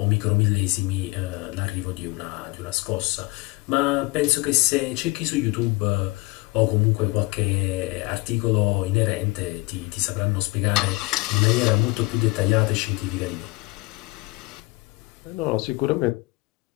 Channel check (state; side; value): quieter; right; 23.4 dB